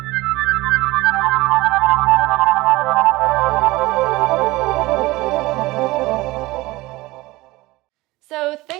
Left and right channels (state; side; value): quieter; left; 20.1 dB